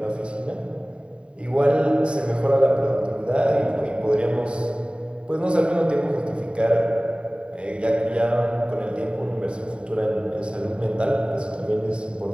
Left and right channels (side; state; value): left; late; 0.054 ms